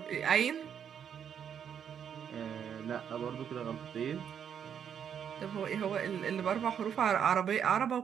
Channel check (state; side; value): quieter; left; 8.2 dB